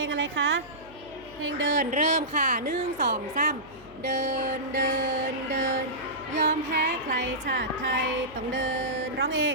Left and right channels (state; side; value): noise; right; hum, 24 dB below the sound